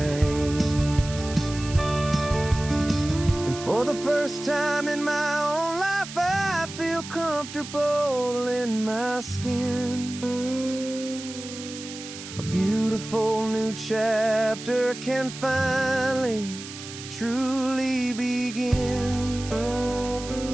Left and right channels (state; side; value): noise; right; hiss, 12 dB below the sound